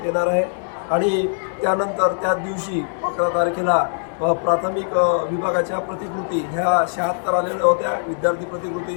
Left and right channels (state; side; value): silent; right; digital silence